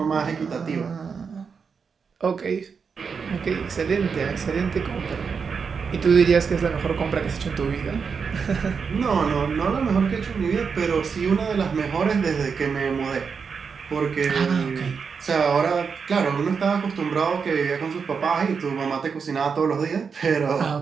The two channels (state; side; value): quieter; left; 5.8 dB